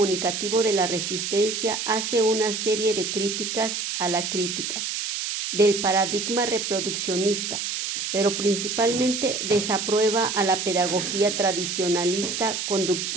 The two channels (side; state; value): right; noise; hiss, 3 dB below the sound